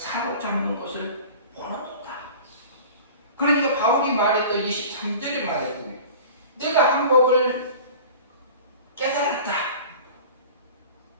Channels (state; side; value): inverted; both; correlation -0.40